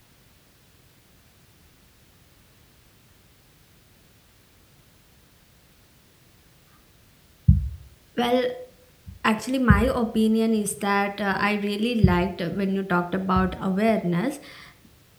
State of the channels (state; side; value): identical; both; correlation 1.00